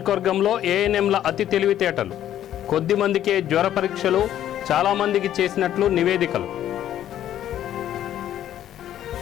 ఏఎన్ఎంల అతి తెలివితేటలు. కొద్ది మందికే జ్వర పరీక్షలు, చాలామందికి చేసినట్లు నివేదికలు.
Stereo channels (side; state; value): right; quieter; 11.5 dB